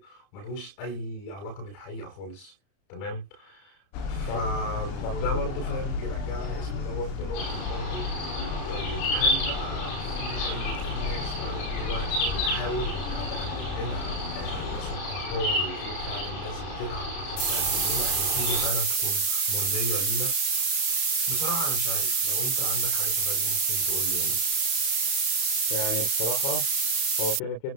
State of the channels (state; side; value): late; right; 32 ms